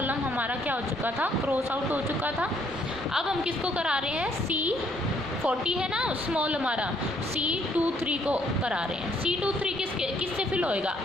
हमारा क्या हो चुका था, क्रॉस आउट हो चुका था। अब हम किसको करा रहे हैं, C40 है ना स्मॉल हमारा, C23 को करा रहे हैं। C23 किससे फिल होएगा,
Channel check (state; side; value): normal; both; correlation 0.67